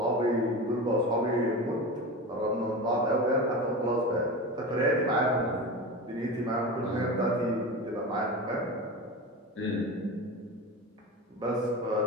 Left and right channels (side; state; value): both; normal; correlation 0.27